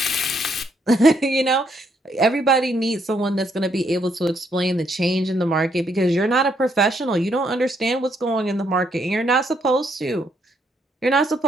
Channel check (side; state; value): both; normal; correlation 0.73